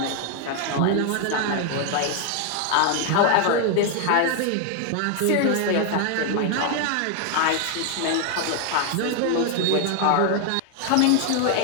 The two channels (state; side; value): different; both; correlation 0.01